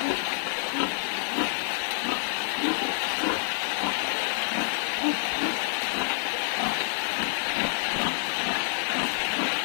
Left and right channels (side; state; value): right; silent; 60 dB below the other